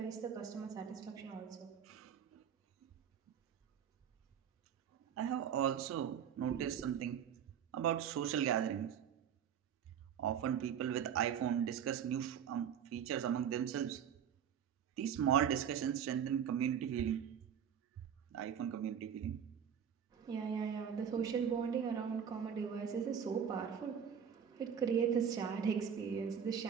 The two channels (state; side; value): quieter; left; 8.3 dB